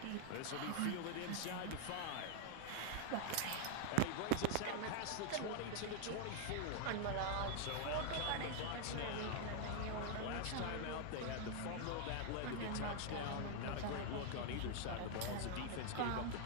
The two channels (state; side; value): different; both; correlation 0.00